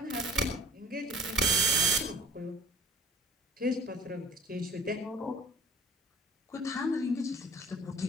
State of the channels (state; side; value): normal; both; correlation 0.51